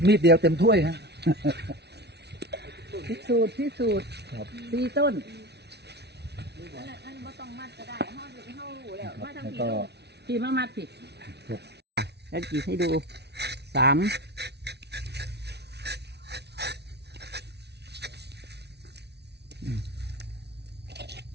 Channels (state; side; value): late; left; 0.49 ms